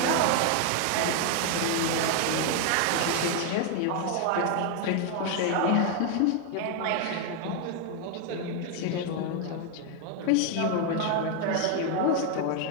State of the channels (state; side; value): different; both; correlation 0.00